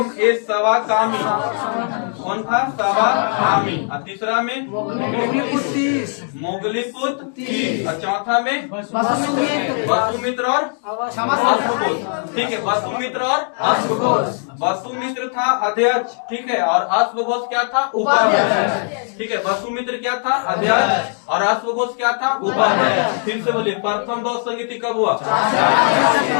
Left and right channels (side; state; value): right; silent; 56 dB below the other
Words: कौन था? सवाकामी। और तीसरा में? मोगलीपुत्र। और चौथा में? वसुमित्र और अश्वघोष। ठीक है, वसुमित्र और अश्वघोष। वसुमित्र था अध्यक्ष। ठीक है, और अश्वघोष क्या था? उपाध्यक्ष। ठीक है, वसुमित्र क्या था? अध्यक्ष। और अश्वघोष क्या था? उपाध्यक्ष। फिर से बोलिए, प्रथम बौद्ध संगीति कब हुआ?